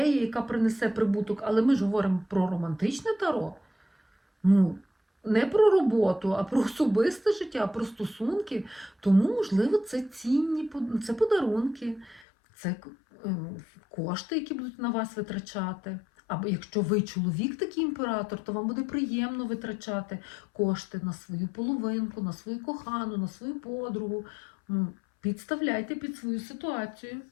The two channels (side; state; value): right; drops out; at 12.2 s